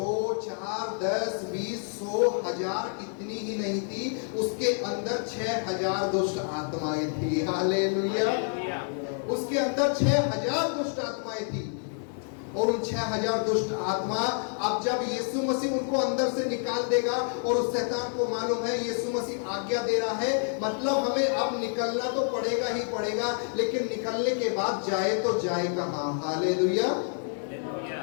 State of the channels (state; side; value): silent; right; 56 dB below the other